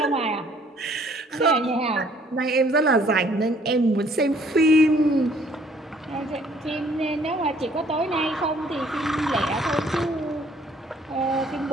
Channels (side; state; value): both; normal; correlation 0.60